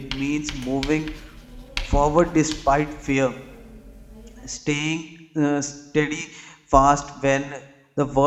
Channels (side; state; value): both; identical; correlation 1.00